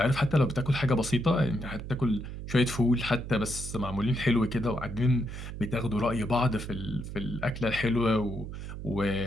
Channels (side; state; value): right; noise; hum, 9 dB below the sound